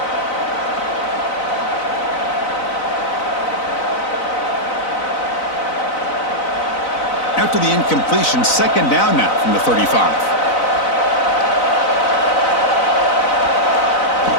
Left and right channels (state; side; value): late; right; 4.0 ms